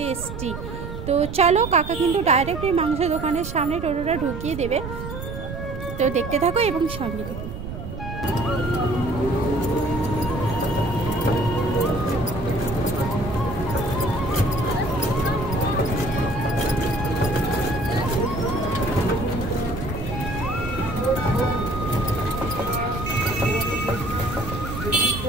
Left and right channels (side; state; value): right; noise; rumble, 8 dB below the sound